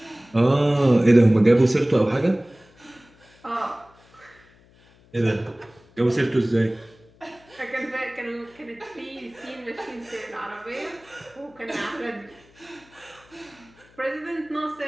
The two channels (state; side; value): noise; left; hum, 29 dB below the sound